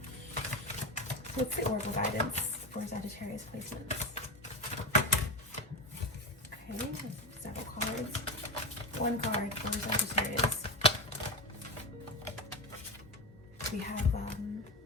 So what's the oracle guidance for Sagittarius placements? Okay, several cards. One card for Sagittarius. We have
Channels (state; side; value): normal; both; correlation 0.18